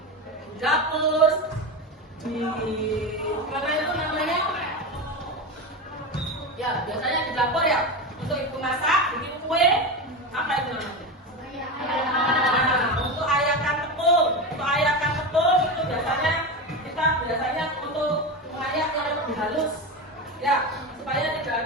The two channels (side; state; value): both; normal; correlation 0.20